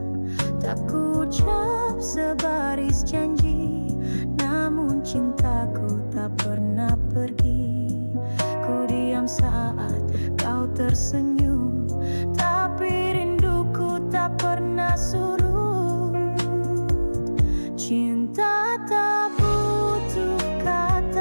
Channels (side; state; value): both; inverted; correlation -1.00